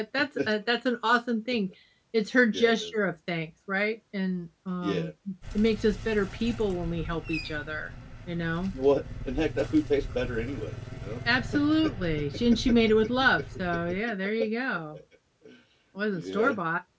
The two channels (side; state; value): both; identical; correlation 1.00